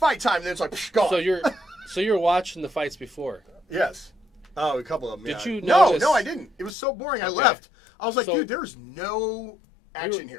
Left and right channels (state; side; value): drops out; right; at 6.8 s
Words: time, and then it's like gone. So you're watching the fights before. Yes. Oh, a couple of them. Did you notice? No, I didn't. It was so boring. I left. I was like, dude, there's no action